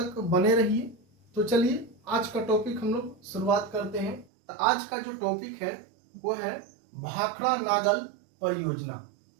बने रहिए। तो चलिए आज का टॉपिक हम लोग शुरुआत करते हैं। तो आज का जो टॉपिक है वो है भाखड़ा नागल परियोजना।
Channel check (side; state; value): left; drops out; at 4.2 s